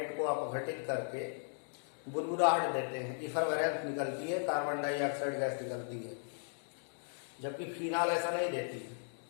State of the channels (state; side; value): silent; right; digital silence